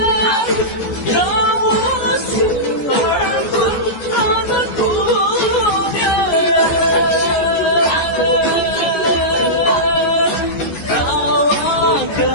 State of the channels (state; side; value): late; right; 14 ms